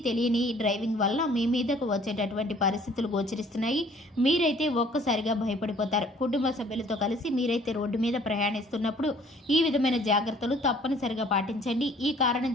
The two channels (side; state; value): both; normal; correlation 0.56